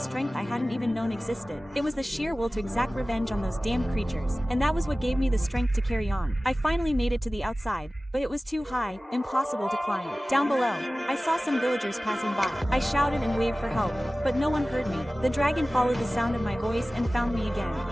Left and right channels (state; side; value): normal; both; correlation 0.97